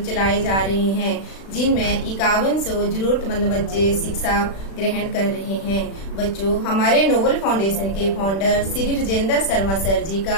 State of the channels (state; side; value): late; right; 36 ms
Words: चलाए जा रहे हैं, जिनमें 5100 जरूरतमंद बच्चे शिक्षा ग्रहण कर रहे हैं। बच्चों हमारे नोबल फाउंडेशन के फाउंडर श्री राजेंद्र शर्मा सर जी